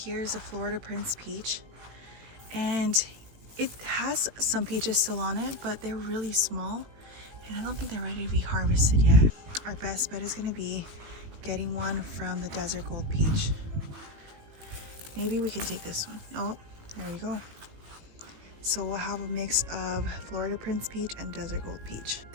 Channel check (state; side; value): late; left; 18 ms